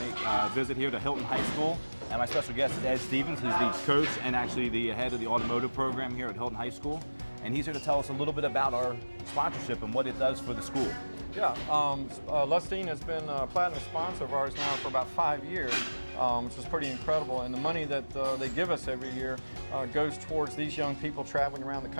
a visit here to Hylton High School. And my special guest is Ed Stevens, who's the coach and actually the head of the Automotive program here at Hylton High School. And he's here to tell us a little bit about our sponsorship and what it does for the school. Yeah, Lustine has been a platinum sponsor of ours now for about 5 years, which is pretty incredible. And the money that they give us every year goes towards these young people traveling around the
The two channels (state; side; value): inverted; both; correlation -1.00